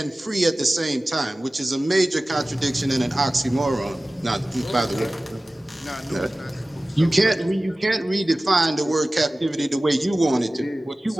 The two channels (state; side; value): normal; both; correlation 0.97